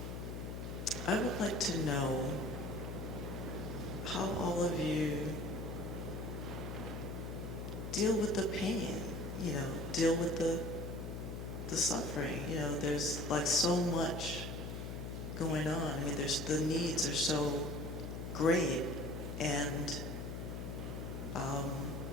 I would like to know how all of you deal with the pain, deal with the suffering. There's like so much going on. I mean, the needs are so great, and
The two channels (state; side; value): noise; left; hum, 5 dB below the sound